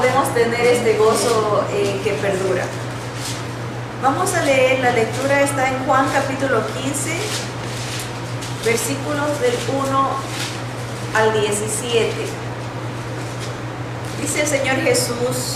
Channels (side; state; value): both; identical; correlation 1.00